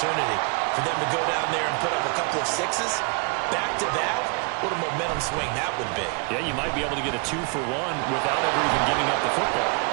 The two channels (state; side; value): quieter; left; 32.8 dB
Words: for them to go down there and put up a couple of 6s back-to-back. What a momentum swing that would be. Yeah, you might be able to get a 2-for-1 without ever even giving up the football.